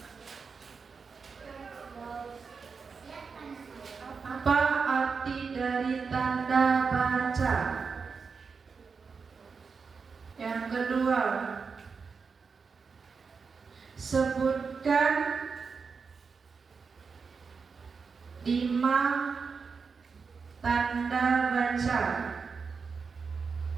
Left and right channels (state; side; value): quieter; left; 5.3 dB